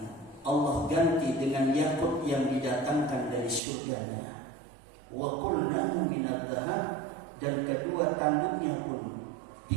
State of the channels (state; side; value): drops out; left; at 3.6 s